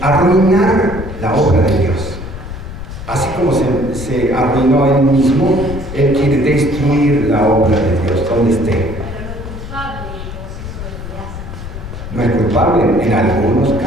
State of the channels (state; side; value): noise; left; rumble, 9 dB below the sound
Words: arruinar la obra de Dios. Así como se arruinó a él mismo, él quiere destruir la obra de Dios, donde esté. No es culpable en algunos